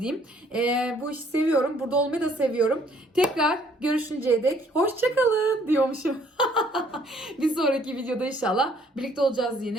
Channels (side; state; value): both; normal; correlation 0.63